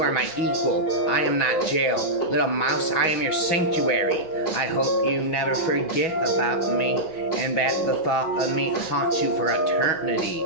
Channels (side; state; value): right; late; 6.2 ms